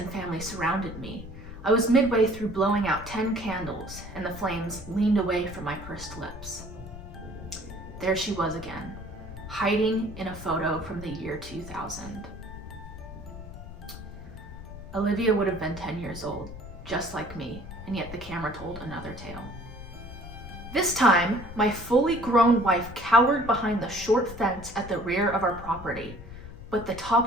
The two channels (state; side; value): noise; left; rumble, 13 dB below the sound